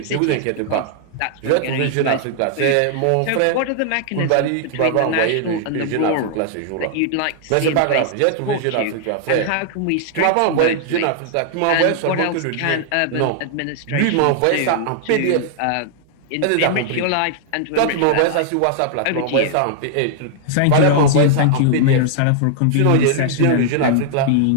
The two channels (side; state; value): both; different; correlation -0.01